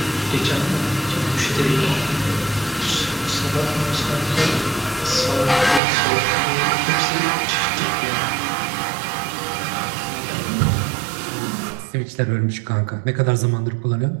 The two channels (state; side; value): drops out; left; at 5.8 s